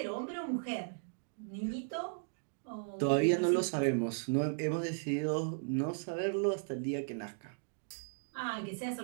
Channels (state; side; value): silent; left; digital silence